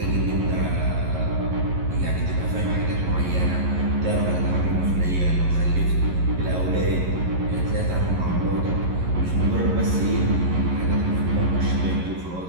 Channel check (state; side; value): late; left; 11 ms